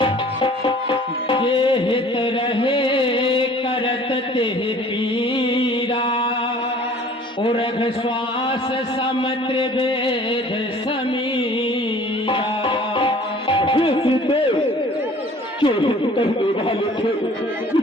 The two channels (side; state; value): both; normal; correlation 0.50